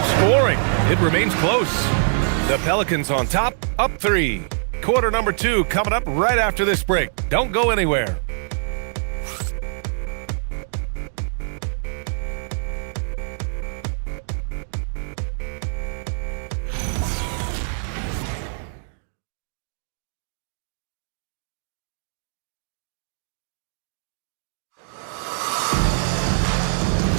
scoring. It remains close. The Pelicans on top, up 3. Quarter number 2 coming up right after this break. Don't go anywhere.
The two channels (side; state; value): left; silent; digital silence